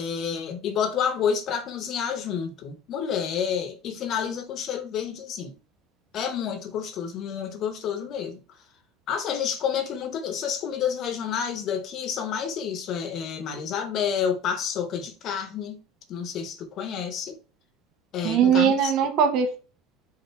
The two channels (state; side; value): normal; both; correlation 0.38